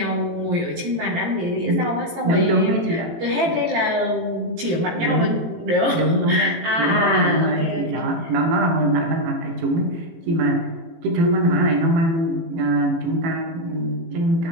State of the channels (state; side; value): late; left; 18 ms